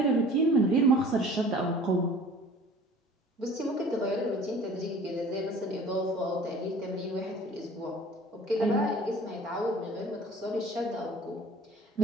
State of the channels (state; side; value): normal; both; correlation 0.47